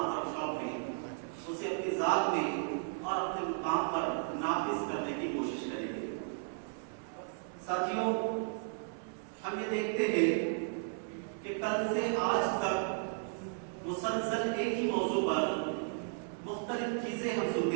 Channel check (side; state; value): left; silent; digital silence